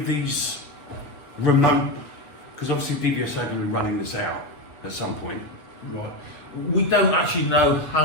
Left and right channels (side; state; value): right; late; 7.5 ms